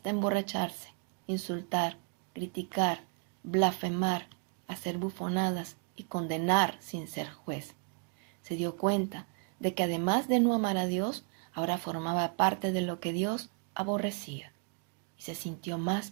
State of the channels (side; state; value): left; quieter; 38.6 dB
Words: emborracharse, insultar, criticar, blasfemar, hacer bufonadas y condenar sin ser juez. Se dio cuenta de que además de no amar a Dios, ahora formaba parte de lo que Dios aborrecía, y se sintió más